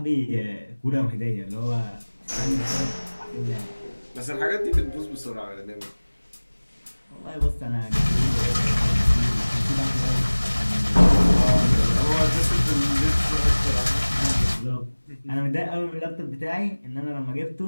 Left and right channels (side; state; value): both; inverted; correlation -1.00